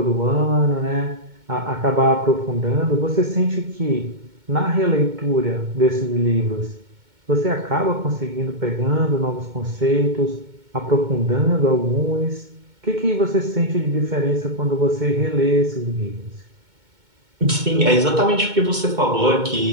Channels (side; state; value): left; late; 2.2 ms